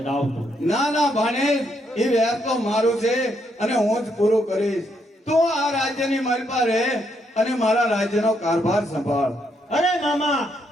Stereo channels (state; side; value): normal; both; correlation 0.76